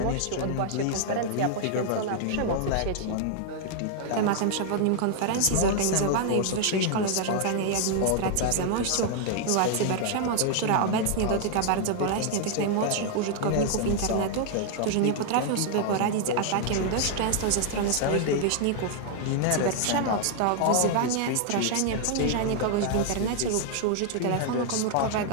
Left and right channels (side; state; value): both; different; correlation 0.00